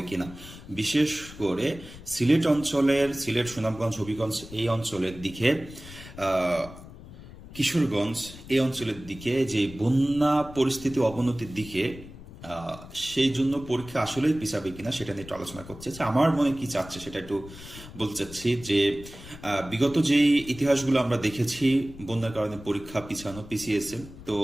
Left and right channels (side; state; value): left; noise; rumble, 16 dB below the sound